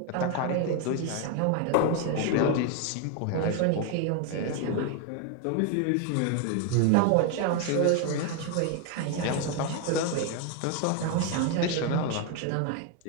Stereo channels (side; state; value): both; different; correlation 0.01